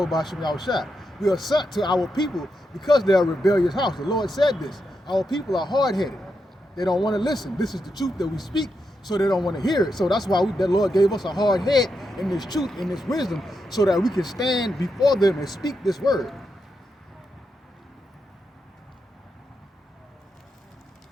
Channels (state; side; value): normal; both; correlation 0.85